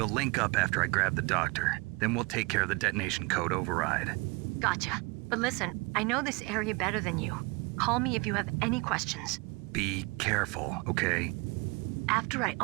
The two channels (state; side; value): quieter; left; 26.4 dB